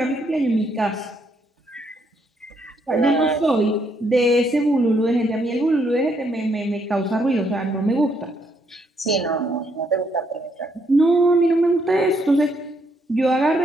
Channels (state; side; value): normal; both; correlation 0.73